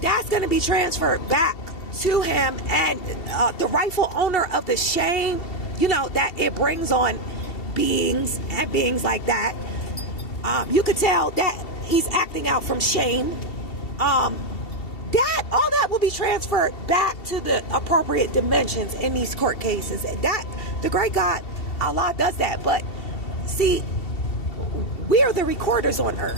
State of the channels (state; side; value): late; right; 2.7 ms